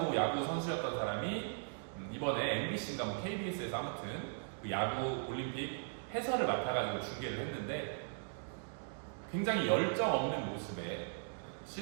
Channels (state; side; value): silent; left; digital silence